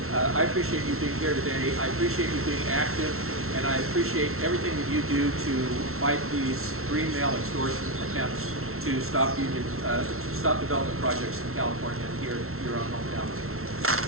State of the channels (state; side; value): late; left; 0.62 ms